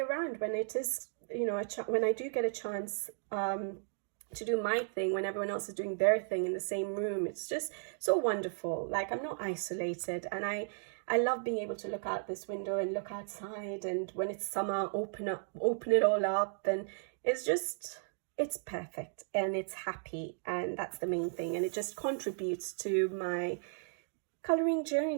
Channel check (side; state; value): left; silent; digital silence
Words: when it is, you know, when I do get a chance to do my thing when everyone else is doing their thing in the same room, it's just so wonderful. Like, I'm not isolated, and I love being able to look out this window and look outside, and when it's summer, open it all up, and it's perfect and it's happy, and that's the main thing. And it just contributes to my coloring